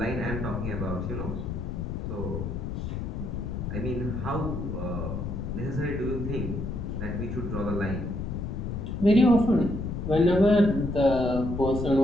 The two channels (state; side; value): noise; left; rumble, 4 dB below the sound